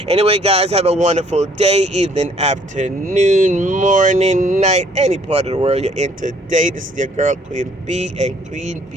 Anyway, guys, have a wonderful day, evening, afternoon, morning, night, any part of the world you're in today. This is your girl, Queen B, and Queen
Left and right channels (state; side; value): normal; both; correlation 0.62